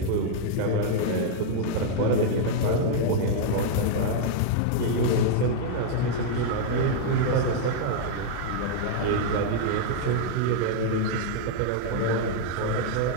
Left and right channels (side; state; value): both; different; correlation -0.01